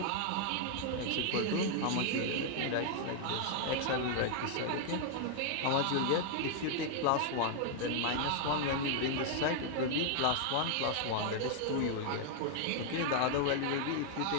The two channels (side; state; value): both; different; correlation 0.00